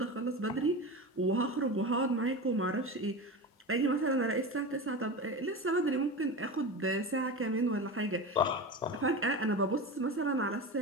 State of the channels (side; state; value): both; normal; correlation 0.26